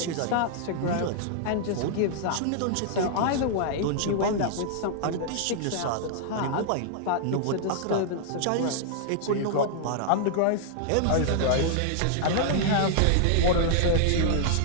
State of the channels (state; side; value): different; both; correlation -0.01